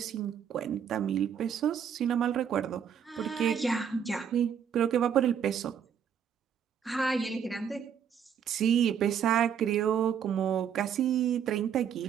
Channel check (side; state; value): left; quieter; 8.1 dB